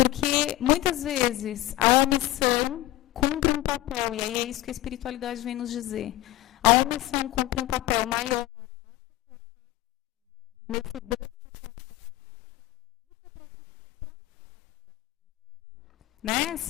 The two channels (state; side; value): quieter; right; 16.7 dB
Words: muitas vezes a omissão cumpre um papel, e aí é isso que a espiritualidade vem nos dizer. A omissão cumpre um papel maior né?